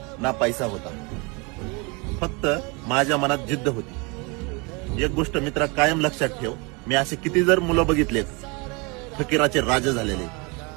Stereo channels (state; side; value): quieter; left; 29.4 dB